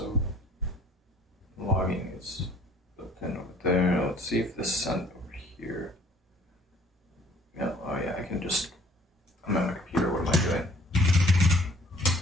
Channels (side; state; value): both; normal; correlation 0.56